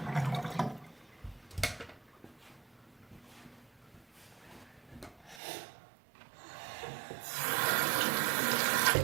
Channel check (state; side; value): drops out; left; at 5.4 s